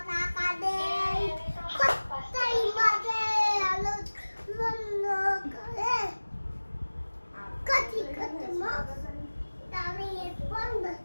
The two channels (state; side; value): inverted; both; correlation -1.00